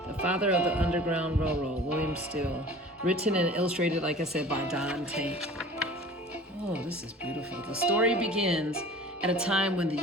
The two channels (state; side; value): normal; both; correlation 0.43